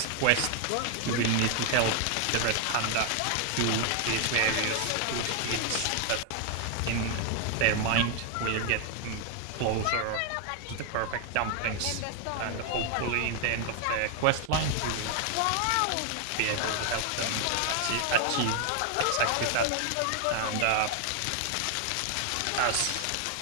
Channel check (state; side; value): different; both; correlation 0.00